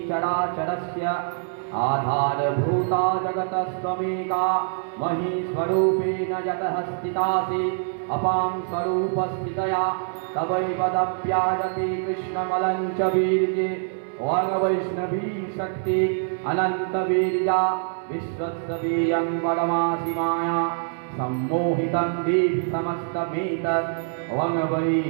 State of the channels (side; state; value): left; silent; 62 dB below the other